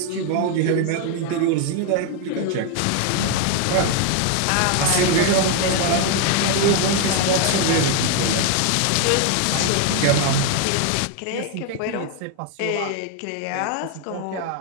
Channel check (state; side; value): different; both; correlation 0.01